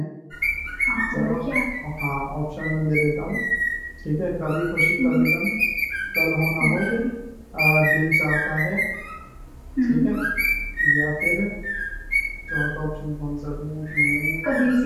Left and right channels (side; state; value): both; identical; correlation 1.00